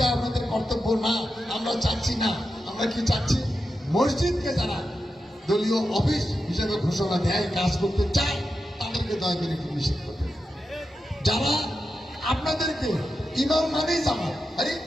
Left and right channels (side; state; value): both; normal; correlation 0.89